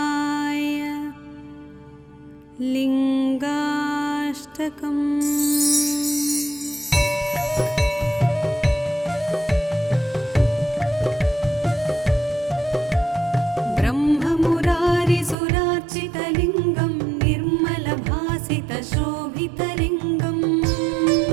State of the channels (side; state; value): left; drops out; at 15.4 s